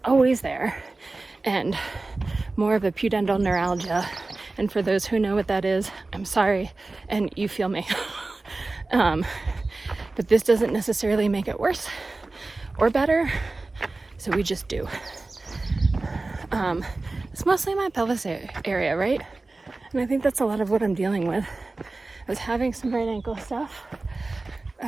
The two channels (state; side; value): quieter; left; 3.3 dB